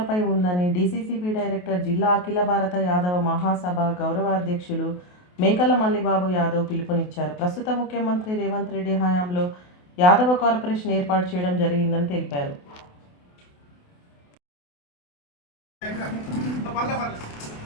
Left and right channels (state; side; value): late; right; 28 ms